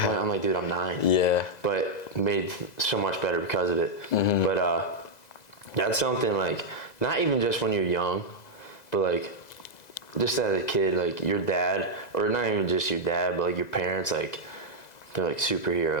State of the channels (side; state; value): right; late; 2.0 ms